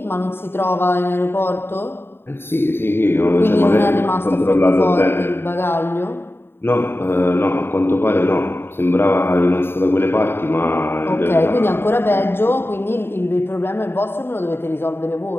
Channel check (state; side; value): late; right; 0.11 ms